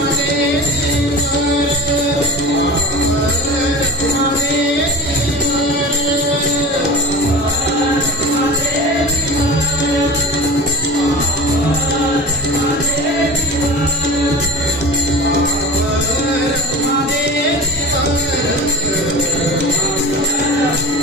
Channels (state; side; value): normal; both; correlation 0.34